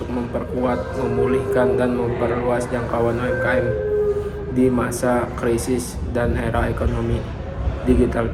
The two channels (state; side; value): identical; both; correlation 1.00